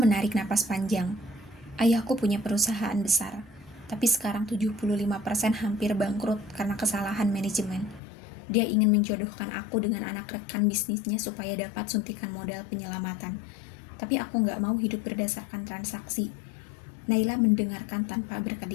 napas panjang. "Ayahku punya perusahaan besar, tapi sekarang 75% hampir bangkrut karena kesalahan manajemen. Dia ingin menjodohkan aku dengan anak rekan bisnisnya supaya dapat suntikan modal penyelamatan. Tapi aku nggak mau hidup berdasarkan transaksi." Naila mendengarkan tanpa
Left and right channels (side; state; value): right; drops out; at 8.0 s